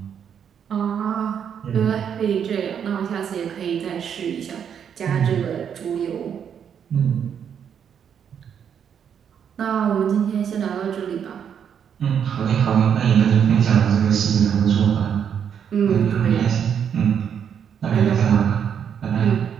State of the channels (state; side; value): quieter; left; 8.1 dB